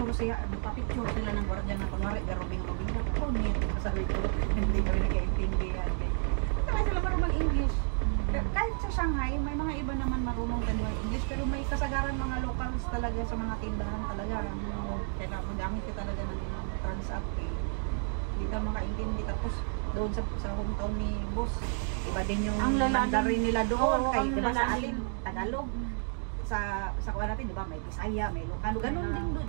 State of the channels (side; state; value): left; silent; 57 dB below the other